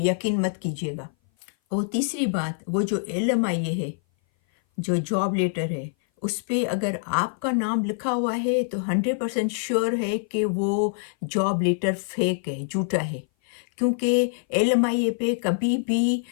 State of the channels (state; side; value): silent; right; 58 dB below the other